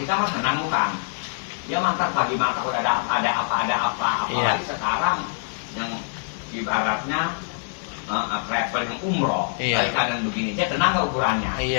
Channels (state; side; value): silent; right; digital silence